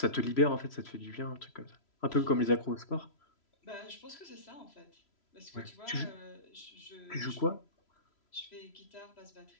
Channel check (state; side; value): late; right; 3.0 ms